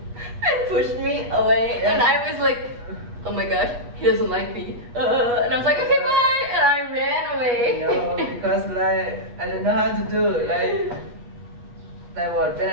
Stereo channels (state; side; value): late; left; 8.3 ms